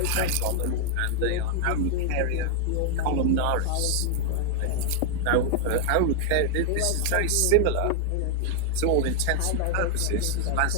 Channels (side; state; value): both; different; correlation 0.00